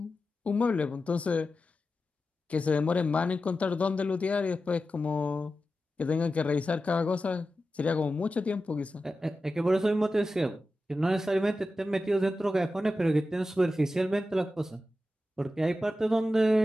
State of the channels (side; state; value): both; normal; correlation 0.92